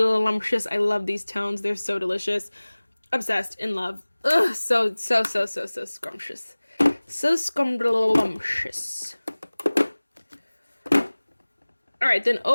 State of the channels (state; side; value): inverted; both; correlation -1.00